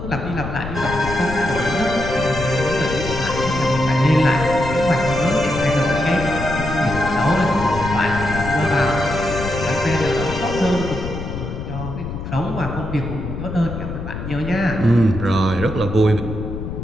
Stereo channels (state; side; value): noise; left; rumble, 7 dB below the sound